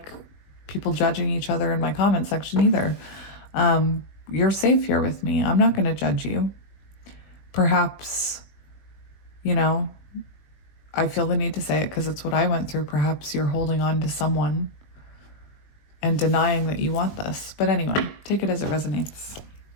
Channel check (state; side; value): late; right; 20 ms